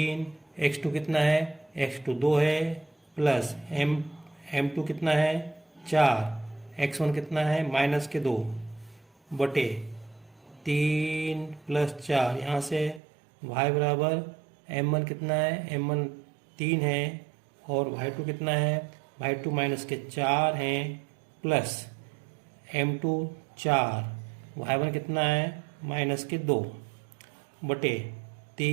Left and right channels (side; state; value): left; drops out; at 13.0 s